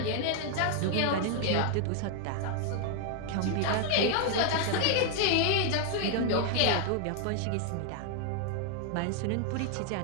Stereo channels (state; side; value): different; both; correlation 0.00